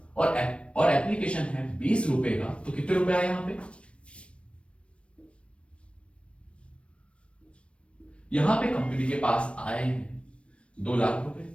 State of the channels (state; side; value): late; right; 0.060 ms